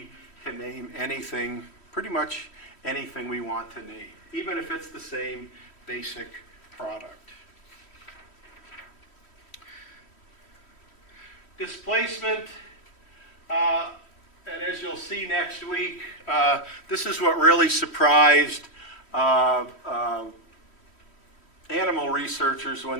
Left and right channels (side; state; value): right; late; 3.1 ms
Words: can name anything, pretty much anything we want to name, even if it's the same basic product. Displacement, and as you'll see next week, this is what really surprised animal researchers when